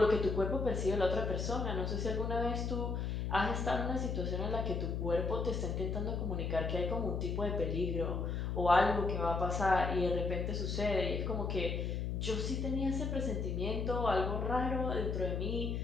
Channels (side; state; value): left; noise; hum, 1 dB below the sound